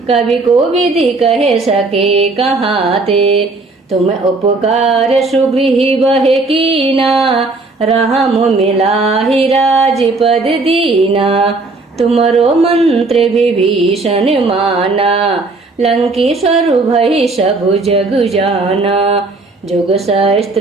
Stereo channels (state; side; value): quieter; left; 3.5 dB